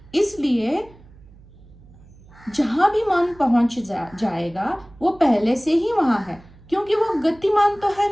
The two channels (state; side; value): noise; right; hum, 23 dB below the sound